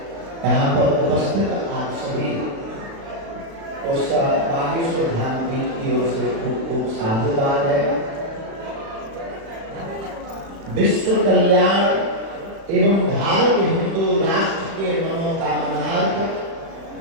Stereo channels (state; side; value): late; left; 36 ms